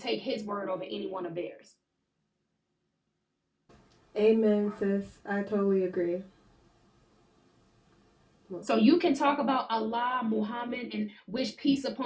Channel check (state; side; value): identical; both; correlation 1.00